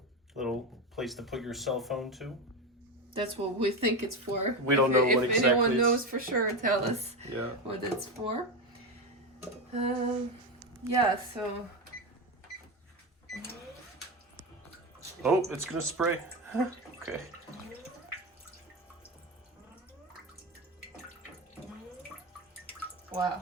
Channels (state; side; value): normal; both; correlation 0.17